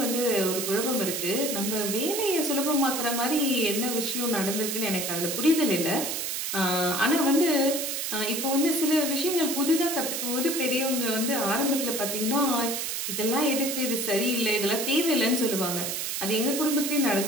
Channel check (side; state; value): right; noise; hiss, 2 dB below the sound